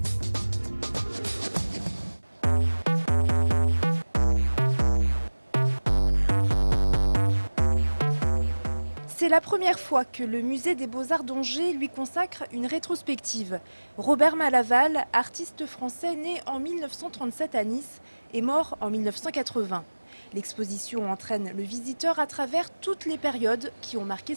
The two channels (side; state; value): both; inverted; correlation -1.00